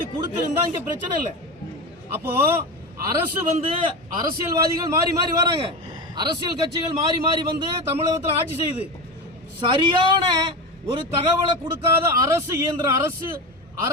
கொடுத்துருந்தா இங்க பிரச்சனை இல்லை. அப்போ அரசு வந்து அரசியல்வாதிகள் மாறி மாறி வராங்க, அரசியல் கட்சிகள் மாறி மாறி வந்து தமிழகத்தில் ஆட்சி செய்யுது. சரியான ஒரு தகவலை கொடுக்காத அரசு இயந்திரம்,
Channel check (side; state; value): both; normal; correlation 0.22